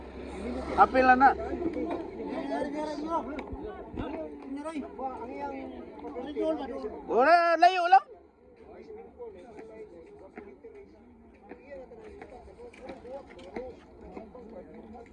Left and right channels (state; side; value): identical; both; correlation 1.00